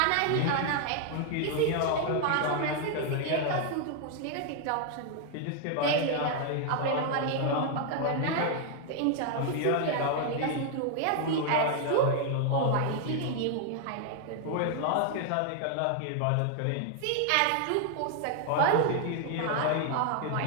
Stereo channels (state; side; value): different; both; correlation 0.00